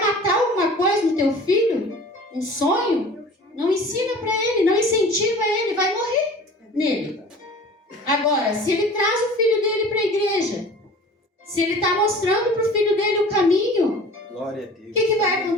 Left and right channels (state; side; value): normal; both; correlation 0.43